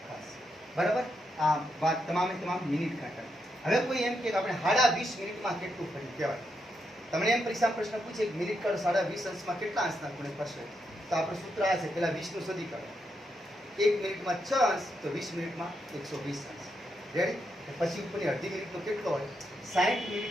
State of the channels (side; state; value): both; normal; correlation 0.82